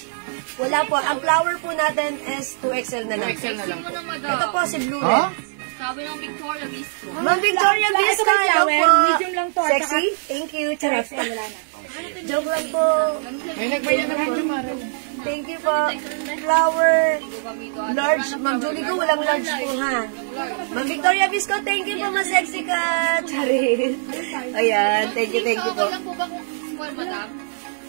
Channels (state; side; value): silent; left; digital silence